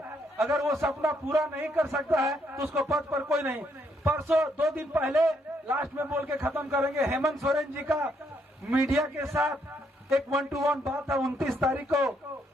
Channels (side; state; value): both; normal; correlation 0.73